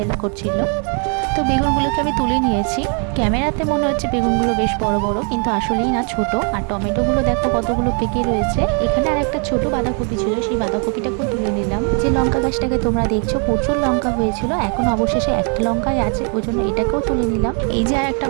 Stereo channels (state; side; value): quieter; left; 39.9 dB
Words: করছিল। তো বেগুনগুলোকে আমি তুলে নিয়েছি। ক্যামেরাতে মনে হচ্ছে বেগুনগুলো বেশ বড় বড়, কিন্তু আসলেই না, ছোট। আর টমেটোগুলো দেখো কতগুলো পেকে রয়েছে। এখানে আর একটা ছোট বাঁধাকপি ছিল, সেই বাঁধাকপিটাকেও তুলে নিলাম। যে লঙ্কা গাছটাকে তোমরা দেখছো প্রচুর লঙ্কা হয়েছিল, এখন অবশেষে একটা লঙ্কাই আছে, ওই জন্য এটাকেও তুলে নিলাম। এই যে আর একটা